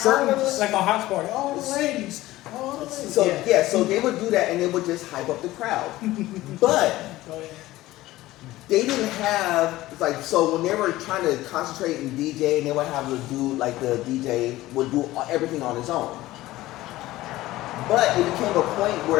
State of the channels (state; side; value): quieter; right; 16.9 dB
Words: Like a house party. All the ladies. So so they would do that, and they would just hype up the crowd. But they didn't have so when they were trying to concentrate and DJ, and they would have the dude the DJ would do everything on his own. But it became a point